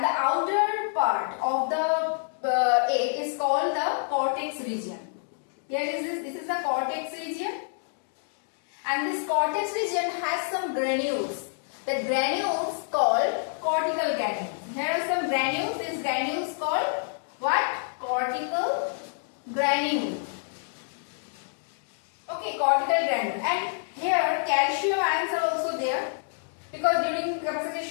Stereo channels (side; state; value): right; silent; digital silence